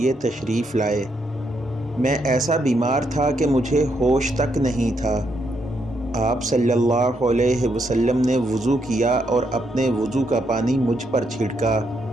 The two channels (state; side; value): normal; both; correlation 0.78